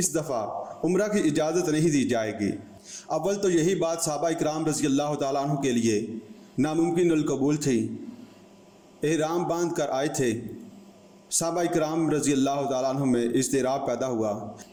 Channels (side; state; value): both; identical; correlation 1.00